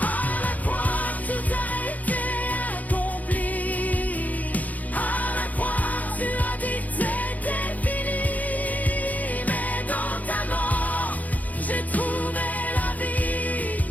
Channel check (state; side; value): late; right; 0.078 ms